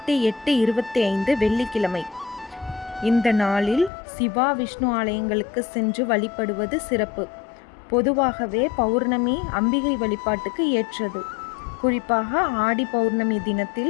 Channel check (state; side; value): drops out; right; at 3.9 s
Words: வெள்ளிக்கிழமை. இந்த நாளில் சிவா விஷ்ணு ஆலயங்களுக்கு சென்று வழிபடுவது சிறப்பு. பொதுவாகவே பௌர்ணமி அம்பிகை வழிபாட்டுக்கு ஏற்றது. குறிப்பாக ஆடி பௌர்ணமி